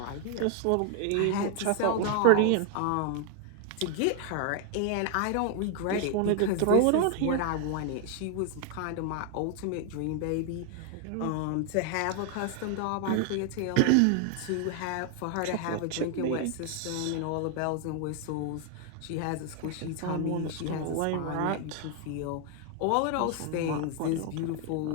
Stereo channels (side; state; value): both; different; correlation 0.00